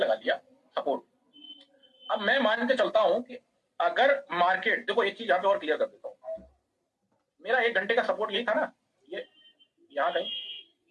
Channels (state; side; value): identical; both; correlation 1.00